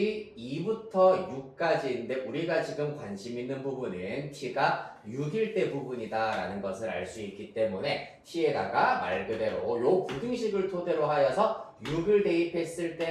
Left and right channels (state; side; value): identical; both; correlation 1.00